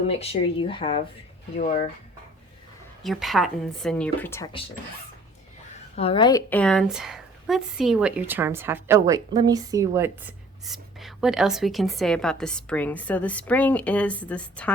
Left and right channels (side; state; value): both; normal; correlation 0.53